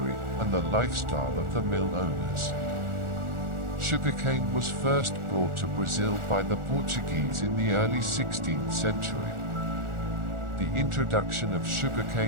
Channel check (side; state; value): left; late; 1.4 ms